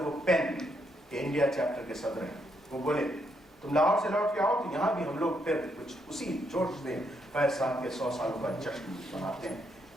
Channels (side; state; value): both; normal; correlation 0.76